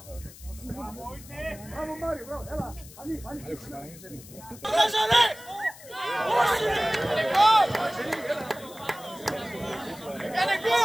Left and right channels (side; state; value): left; noise; hiss, 18 dB below the sound